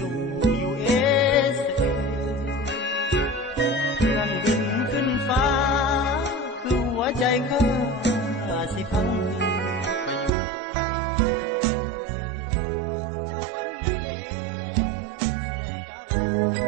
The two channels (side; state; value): left; drops out; at 10.3 s